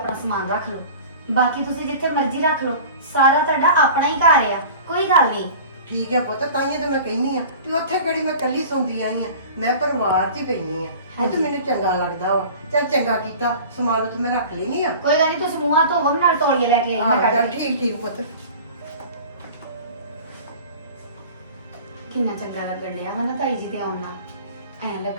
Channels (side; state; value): both; inverted; correlation -0.40